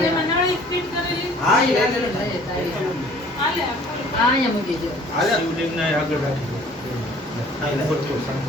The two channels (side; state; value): both; normal; correlation 0.53